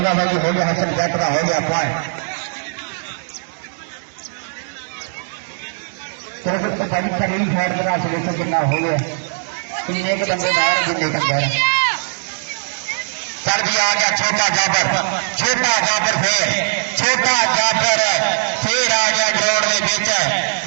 भाई जी हो गया हसन जट का हो गया पॉइंट बड़ी शरीर शहर का सलूशन कितना हो गया किन्ने के बंदे बाहर किन्ने के अंदर सर भी आ गया छोटा जाबर फिर आ गया ग्राउंड के बीच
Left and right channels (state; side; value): silent; left; digital silence